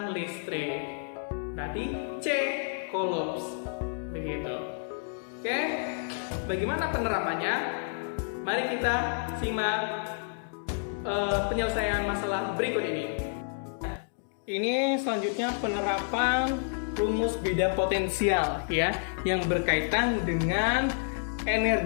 listrik. Berarti C coulombs. Begitu. Oke. Bagaimana penerapannya? Mari kita simak penyelesaian masalah berikut ini. Ini selanjutnya penerapan rumus beda potensial ya, yang berkaitan dengan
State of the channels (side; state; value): right; silent; digital silence